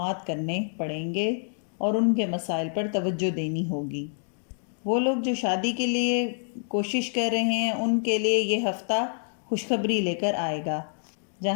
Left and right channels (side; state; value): right; silent; 60 dB below the other